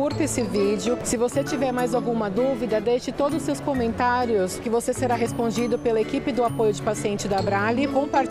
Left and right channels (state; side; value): identical; both; correlation 1.00